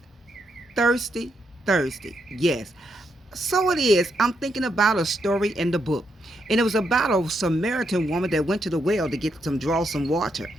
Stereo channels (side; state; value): both; normal; correlation 0.79